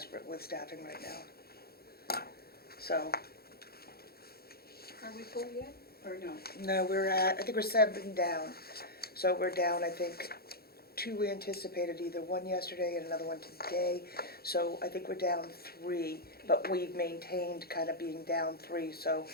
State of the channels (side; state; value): right; late; 0.45 ms